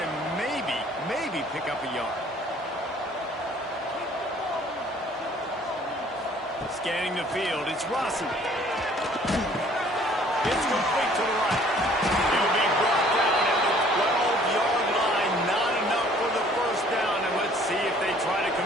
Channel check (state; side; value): normal; both; correlation 0.56